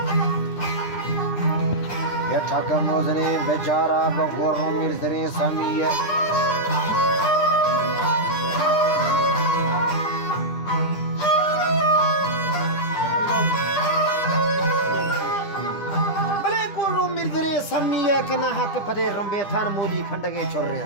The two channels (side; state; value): right; late; 10 ms